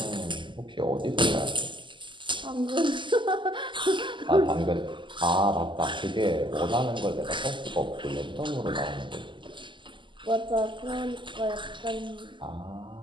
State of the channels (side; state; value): left; late; 0.24 ms